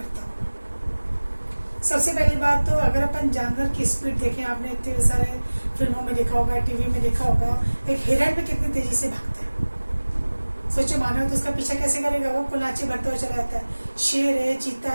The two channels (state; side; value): inverted; both; correlation -1.00